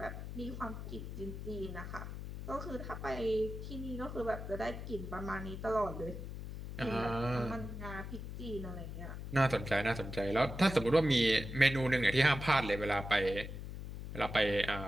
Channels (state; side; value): noise; left; hum, 8 dB below the sound